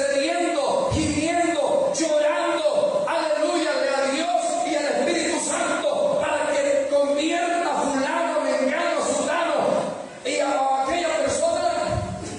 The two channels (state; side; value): identical; both; correlation 1.00